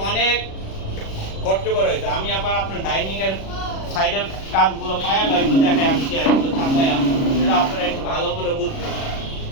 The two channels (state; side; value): late; right; 36 ms